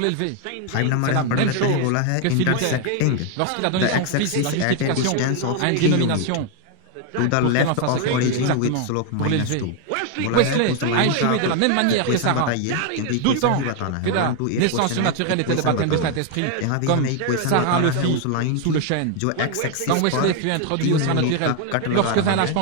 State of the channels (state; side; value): different; both; correlation 0.01